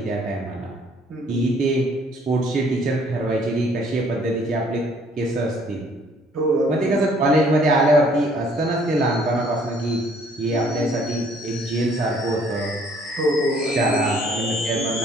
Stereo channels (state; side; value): normal; both; correlation 0.60